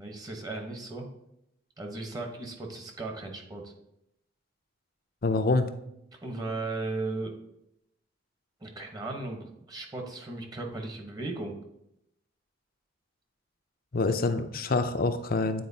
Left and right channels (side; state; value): both; normal; correlation 0.43